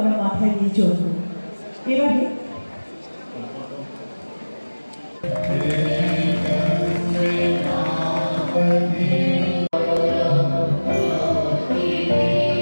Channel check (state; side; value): inverted; both; correlation -1.00